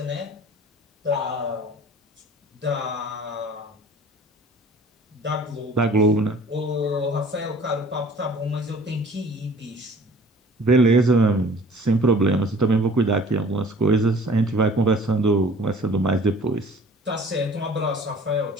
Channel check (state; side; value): normal; both; correlation 0.49